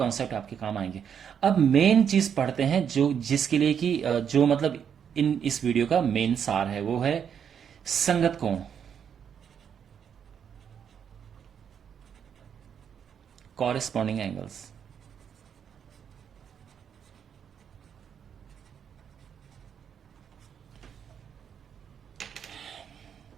आपके काम आएंगे। अब मेन चीज पढ़ते हैं जो जिसके लिए कि जो मतलब इस वीडियो का मेन सार है, वो है संगत कोण, कॉरेस्पॉन्डिंग एंगल्स।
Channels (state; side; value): quieter; left; 7.9 dB